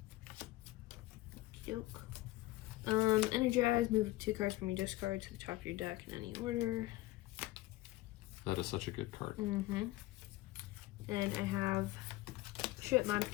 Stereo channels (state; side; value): quieter; right; 18.4 dB